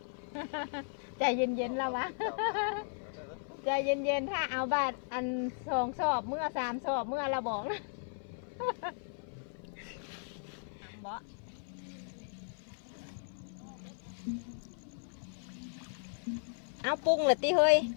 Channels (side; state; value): right; silent; 54 dB below the other